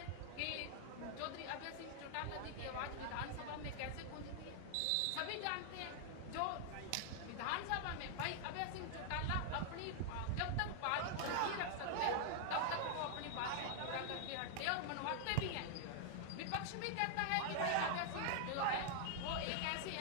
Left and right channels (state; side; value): different; both; correlation -0.01